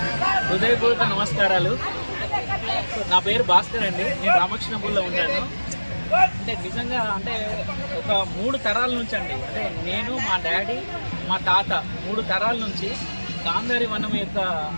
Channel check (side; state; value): both; inverted; correlation -1.00